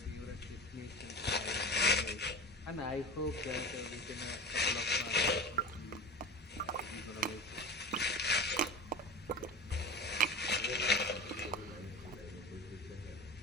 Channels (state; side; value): normal; both; correlation 0.33